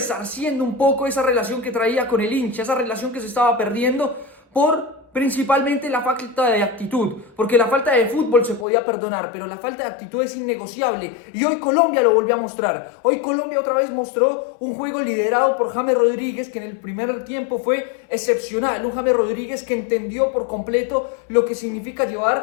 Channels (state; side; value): drops out; right; at 8.7 s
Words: un poco esa relación que traía con el hincha, esa relación que se estaba perdiendo por principalmente la falta de actitud, porque la falta de fútbol se podía perdonar, pero la falta de actitud es innegociable, y hoy Colombia lo volvió a mostrar. Hoy Colombia otra vez mostró un juego liderado por James Rodríguez, que en el primer tiempo fue excepcional, un James Rodríguez que entendió por completo lo que significa